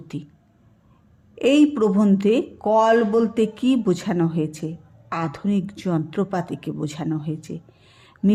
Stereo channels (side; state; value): both; identical; correlation 1.00